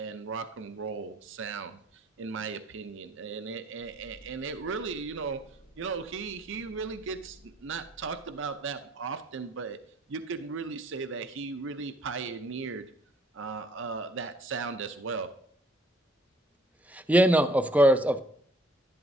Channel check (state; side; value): normal; both; correlation 0.60